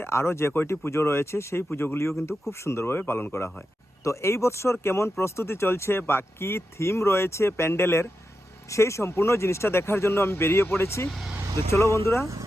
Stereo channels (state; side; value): normal; both; correlation 0.89